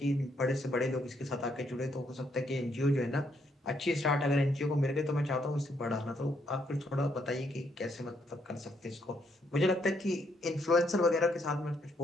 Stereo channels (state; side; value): normal; both; correlation 0.73